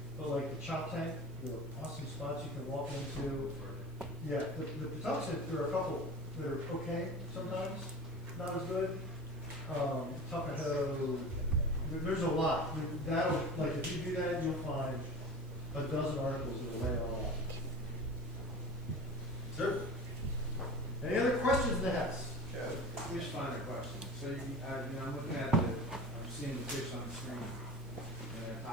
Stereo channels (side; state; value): right; noise; hiss, 28 dB below the sound